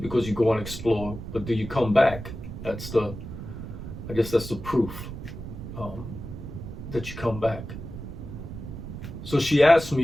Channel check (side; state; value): right; noise; rumble, 9 dB below the sound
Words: because you go and explore, but do you come back? I guess that's the proof that you come back. So she asked